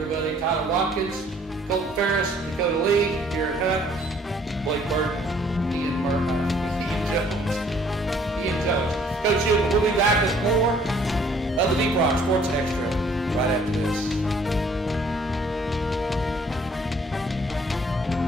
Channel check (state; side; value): normal; both; correlation 0.60